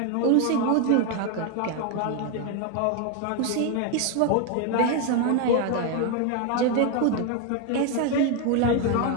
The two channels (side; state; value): both; different; correlation 0.01